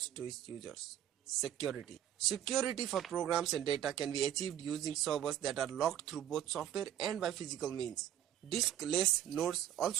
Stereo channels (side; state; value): left; quieter; 11.0 dB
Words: to its users. Security. Security for programs and data can be achieved using servers that are locked through both software and by physical means. Diskless nodes